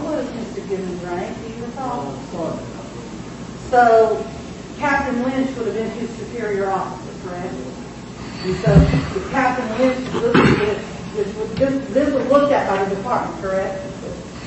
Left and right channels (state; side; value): identical; both; correlation 1.00